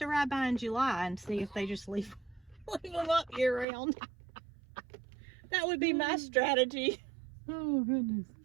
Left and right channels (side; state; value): left; drops out; at 3.7 s